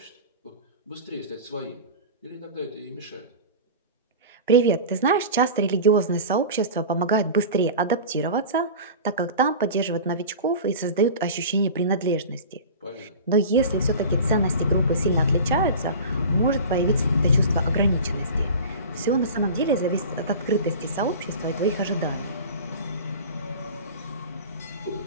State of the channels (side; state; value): both; inverted; correlation -0.34